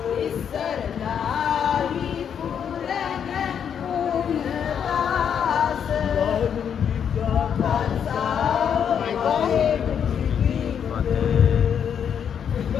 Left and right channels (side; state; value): right; quieter; 8.1 dB